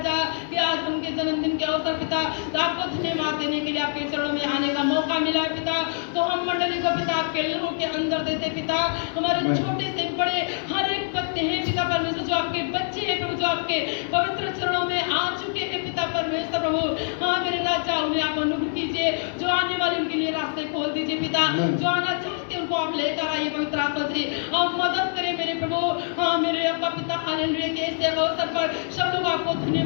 कि आज उनके जन्मदिन के अवसर पिता तो आपको धन्यवाद देने के लिए आपके चरणों में आने का मौका मिला है पिता, तो हम मंडली को पिता आपके लहू के अंदर देते पिता, हमारे छोटे से बड़े हर एक बच्चे हैं पिता परमेश्वर जो आपके बच्चे हैं प्रभु, जो आपके पवित्र चरणों में आ चुके हैं पिता परमेश्वर प्रभु। हाँ मेरे राजा उन्हें आप अनुग्रह कीजिए, जो आने वाले उनके लिए रास्ते खोल दीजिए पिता, जो आना चाहते उनको आप लेकर आइए पवित्र आत्मा से आप मदद करें मेरे प्रभु। हाँ मेरे अब्बा पिता हालेलुया के ऐसे अवसर पर सब लोग आपको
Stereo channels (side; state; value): right; silent; 62 dB below the other